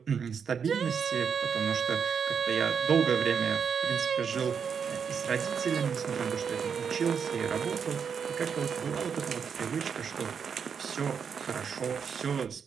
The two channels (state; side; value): quieter; left; 6.7 dB